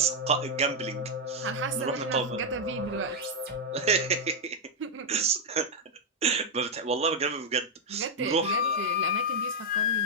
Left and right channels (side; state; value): both; normal; correlation 0.00